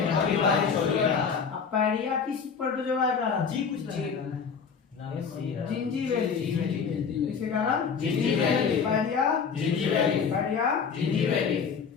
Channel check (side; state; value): right; quieter; 6.1 dB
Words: अमीबा हिस्टोलिटिका। पैरिया किस प्रोटोजोआ के कारण? जी कुछ जिंजीबेली। किसके कारण? जिंजीबेली। पैरिया जिंजीबेली। पैरिया जिंजीबेली।